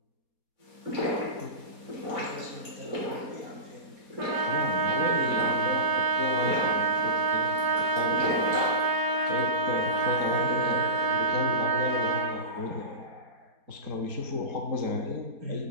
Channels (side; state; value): left; late; 4.2 ms